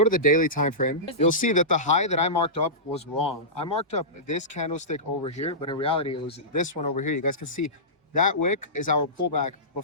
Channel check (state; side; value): normal; both; correlation -0.18